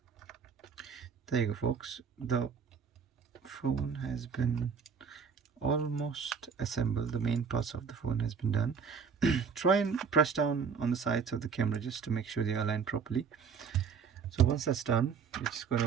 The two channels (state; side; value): quieter; left; 6.1 dB